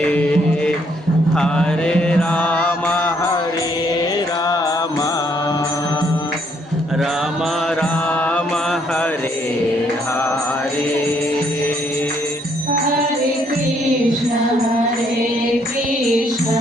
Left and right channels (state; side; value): normal; both; correlation 0.69